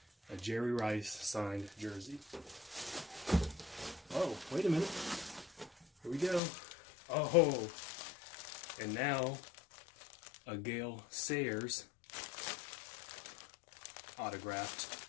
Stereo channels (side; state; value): right; drops out; at 6.4 s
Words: A Jerry Rice signed jersey. Oh, wait a minute. Here we go. Oh, and now a Gale Sayers autographed